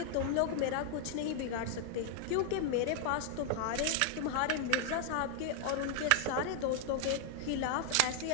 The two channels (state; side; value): different; both; correlation 0.00